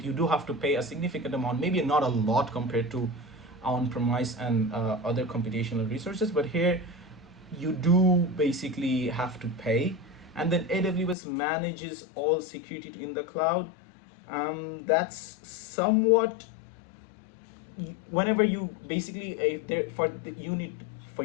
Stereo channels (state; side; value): drops out; right; at 11.2 s